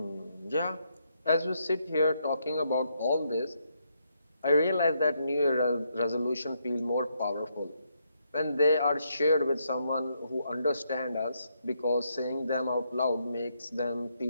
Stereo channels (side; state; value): both; inverted; correlation -0.77